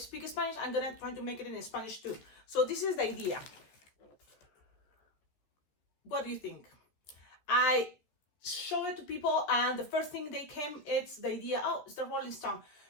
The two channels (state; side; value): late; right; 14 ms